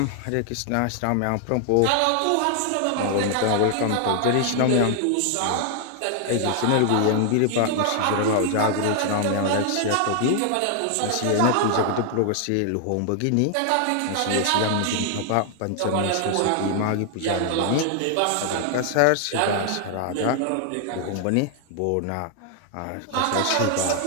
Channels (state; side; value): different; both; correlation 0.00